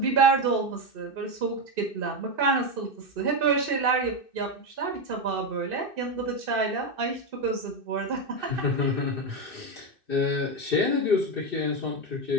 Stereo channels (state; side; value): late; left; 2.6 ms